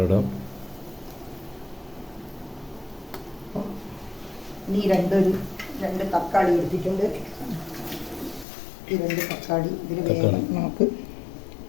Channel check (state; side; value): drops out; right; at 8.5 s